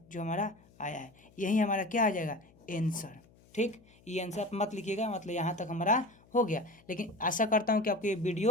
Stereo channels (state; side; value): noise; left; hum, 28 dB below the sound